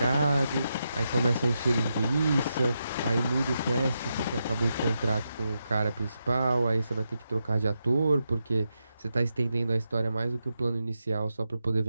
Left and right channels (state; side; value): inverted; both; correlation -0.86